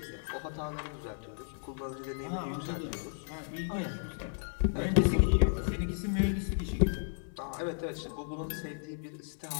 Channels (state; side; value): silent; right; 55 dB below the other